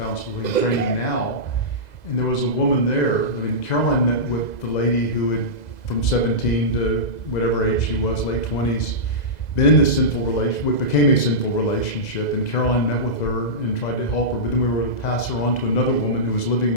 training now. And there was a woman there. Caroline met with the lady who had, from 17 to whatever age she was, late 20s, been in this sinful relationship, what became a sinful relationship. And Caroline met with her and tried to help her. But then we were able to pass her on to another woman who was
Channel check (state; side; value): late; right; 2.0 ms